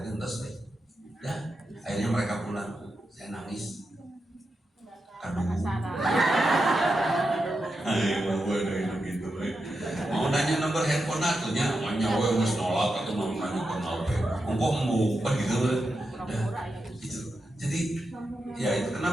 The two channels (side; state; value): both; normal; correlation 0.88